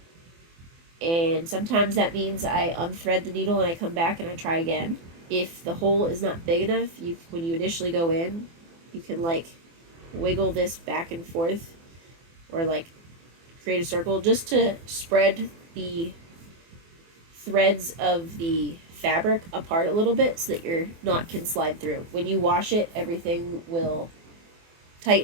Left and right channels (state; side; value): late; left; 24 ms